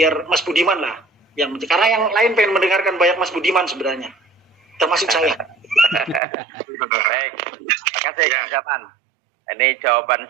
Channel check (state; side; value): drops out; left; at 6.2 s